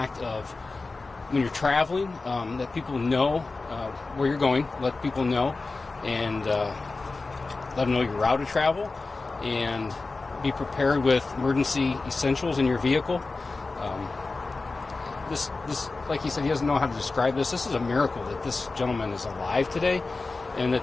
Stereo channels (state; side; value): quieter; right; 3.7 dB